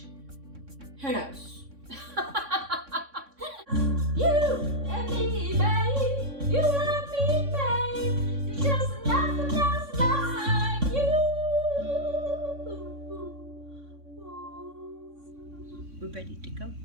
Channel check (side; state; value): left; late; 3.6 ms